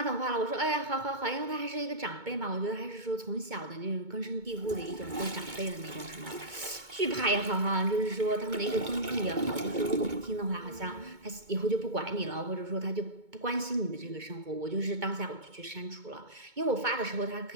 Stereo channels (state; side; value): late; left; 2.2 ms